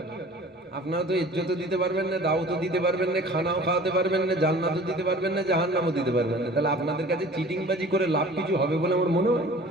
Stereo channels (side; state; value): both; normal; correlation 0.45